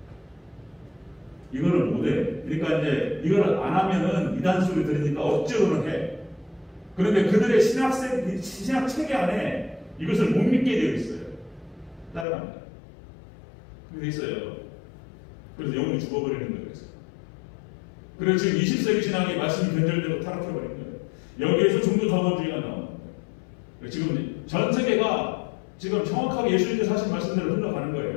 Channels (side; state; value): right; drops out; at 12.2 s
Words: 이거를 못해. 그러니까 이제 이걸 안 하면은 이단 소리 들으니까 억지로는 해. 그런데 그들의 신학 체계 안에 이것을 못 믿게 되어 있어요. 따라갑니다. 그렇게 있어요. 그래서 영혼이 죽어버리는 거예요. 그래서 지금 20세기 신학의 말씀이 변절되고 타락해버린 거예요. 여기에서 종교다원주의가 나오는 거예요. 지금 전 세계가 지금 정확하게 예수님께서 하신 말씀대로 흘러가는